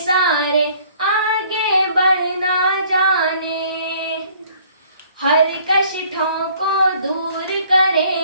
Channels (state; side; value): inverted; both; correlation -0.57